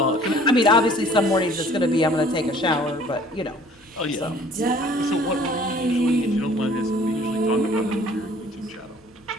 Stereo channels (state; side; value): normal; both; correlation 0.53